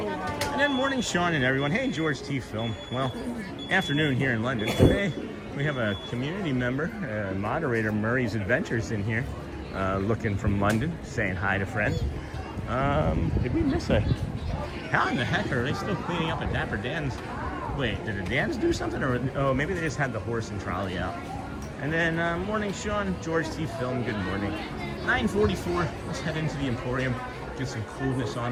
And then morning, Sean and everyone. Hey, George T. Film. Well, afternoon here in London. Today we have a community member, moderator Murray's Adventures in here, looking from London, saying hi to friends. Did we miss a... How in the heck are they still cleaning up at Dapper Dans? Wait, did the Dans do something? Or oh, maybe they just had the horse and trolley out. And then morning, Sean, George T. Film, good morning. 9:44, let's head into the Emporium, get some coolness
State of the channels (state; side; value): identical; both; correlation 1.00